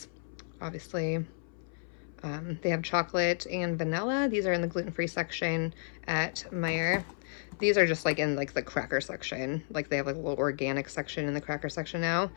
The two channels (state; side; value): silent; right; 56 dB below the other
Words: obviously. They have chocolate and vanilla. These are in the gluten-free section at Meijer. These are just like in like the cracker section. Like they have like a little organic section in the cracker section now,